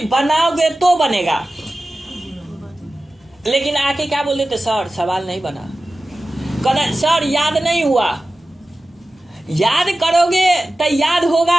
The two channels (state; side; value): normal; both; correlation 0.95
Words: बनाओगे तो बनेगा, लेकिन आके क्या बोल देते, सर सवाल नहीं बना, कहते सर याद नहीं हुआ। याद करोगे तो याद